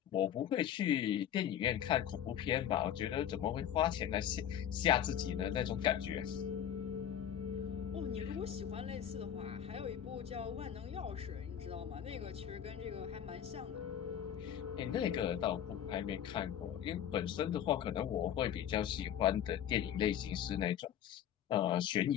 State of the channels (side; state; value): right; quieter; 10.0 dB